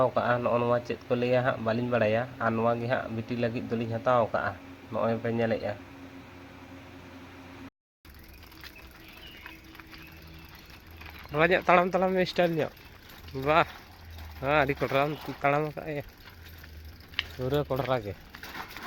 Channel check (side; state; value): both; identical; correlation 1.00